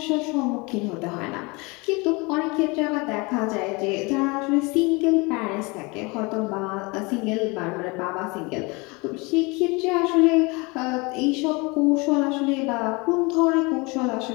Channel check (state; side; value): quieter; right; 27.0 dB